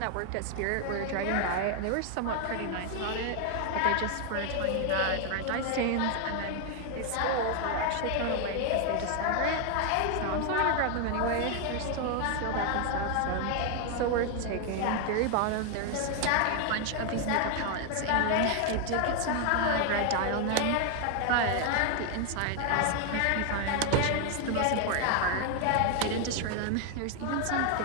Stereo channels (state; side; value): different; both; correlation 0.01